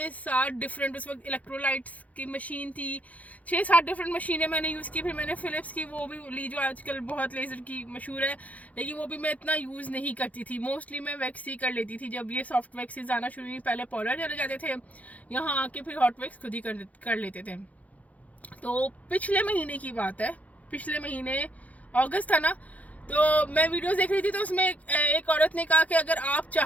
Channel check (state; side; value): late; right; 0.071 ms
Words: डिफरेंट, उस वक्त इलेक्ट्रोलाइट्स की मशीन थी, 6-7 डिफरेंट मशीनें मैंने यूज़ की। फिर मैंने फ़िलिप्स की वो भी ली जो आजकल बहुत लेज़र की मशहूर है, लेकिन वो भी मैं इतना यूज़ नहीं करती थी। मोस्टली मैं वैक्स ही कर लेती थी। जब ये सॉफ्ट वैक्सेस आना शुरू हुई, पहले पार्लर चले जाते थे, यहाँ आके फिर हॉट वैक्स खुद ही कर लेते थे। तो पिछले महीने की बात है, पिछले महीने अगस्त था ना, तो मैं वीडियोस देख रही थी, तो उसमें एक औरत ने कहा कि अगर आप